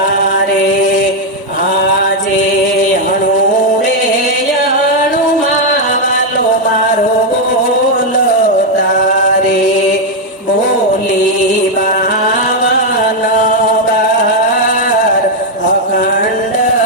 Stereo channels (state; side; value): normal; both; correlation 0.01